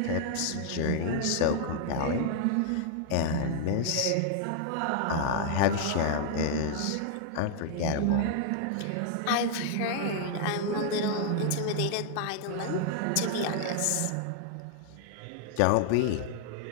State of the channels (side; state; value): both; different; correlation -0.01